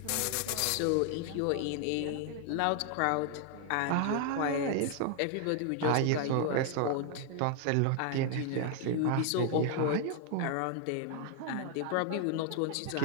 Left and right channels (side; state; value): both; different; correlation 0.00